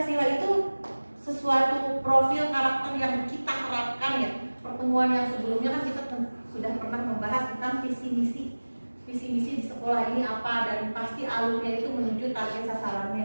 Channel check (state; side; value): inverted; both; correlation -1.00